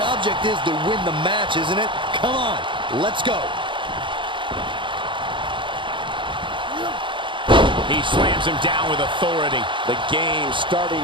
object is to win the match, isn't it? Come on, let's go. He slams him down with authority. The game's starting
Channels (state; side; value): late; left; 0.24 ms